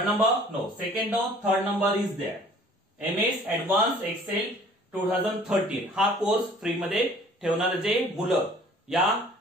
number no, second no, third number is there. MS advance Excel 2013 हा course free मध्ये ठेवणारे जे मुलं या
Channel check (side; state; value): both; normal; correlation 0.52